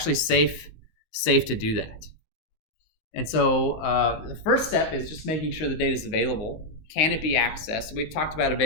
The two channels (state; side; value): late; right; 19 ms